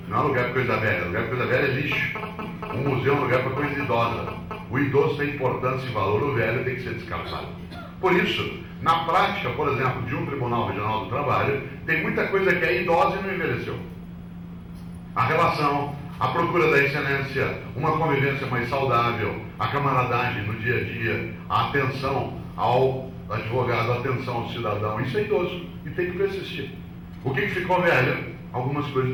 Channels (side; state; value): both; identical; correlation 1.00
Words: não é lugar para coisa velha. Lugar para coisa velha é lixo. Um museu é um lugar para coisa idosa. O idoso tem importância e valor, o velho tem que ser descartado. Por isso, na prática, por exemplo, de um Tribunal Regional do Trabalho, tem muita coisa que é idosa e não envelheceu. A relação, a procura da excelência, uma convivência mais saudável, a camaradagem no dia a dia, a atenção ao advogado, a atenção ao cidadão, isso é idoso e tem que persistir. O que ficou velho? Algumas